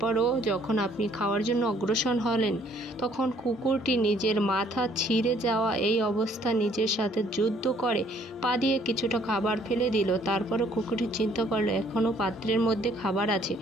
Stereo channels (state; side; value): normal; both; correlation 0.62